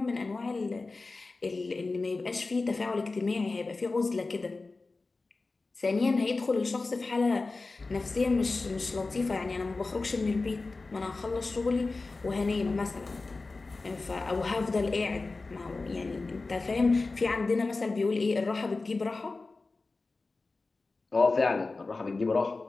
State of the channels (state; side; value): quieter; right; 3.6 dB